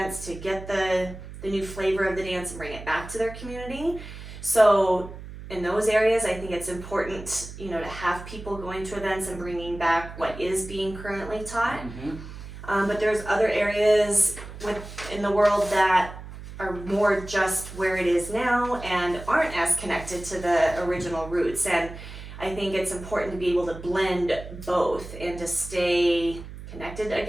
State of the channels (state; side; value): noise; right; hum, 13 dB below the sound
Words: to get the new flavor of the dance and bring it back to their community. So in those areas, I think it's important, to have people going to events and bringing back what is being currently taught. But there's other areas in the world that are more just where it is now and aren't as connected to the original roots. And I think it's important to be able to blend both and to stay connected